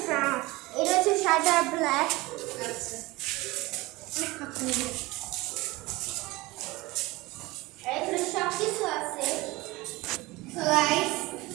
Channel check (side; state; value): left; quieter; 21.4 dB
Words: ব্রাউন, এটা হচ্ছে সাদা ব্ল্যাক। আচ্ছা এখানে সব কিছু আছে। So guys,